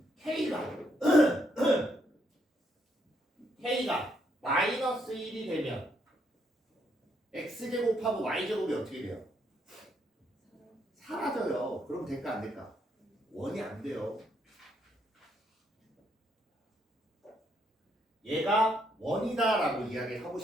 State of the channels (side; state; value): both; normal; correlation 0.75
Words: K가 마이너스 1이 되면 X제곱하고 Y제곱이 어떻게 돼요? 사라져요. 그럼 될까 안 될까? 원이 안 돼요. 얘가 원이다라고 이야기를 하고